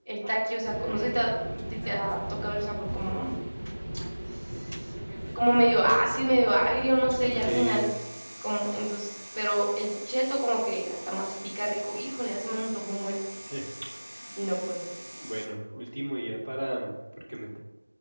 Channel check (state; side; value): inverted; both; correlation -1.00